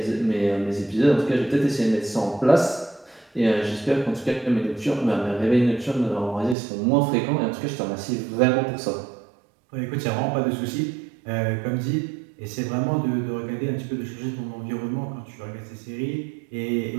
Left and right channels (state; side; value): drops out; left; at 6.6 s